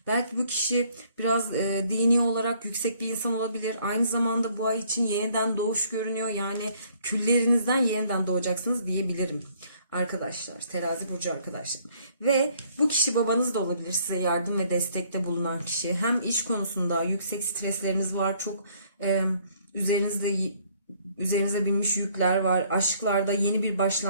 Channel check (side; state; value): both; inverted; correlation -0.63